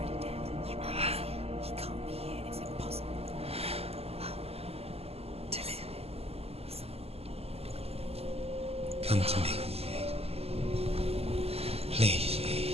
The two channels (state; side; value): late; left; 0.29 ms